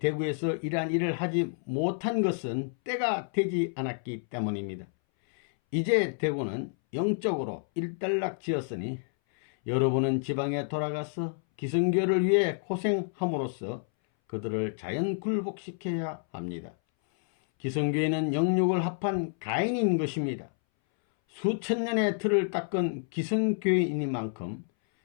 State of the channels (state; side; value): silent; right; 58 dB below the other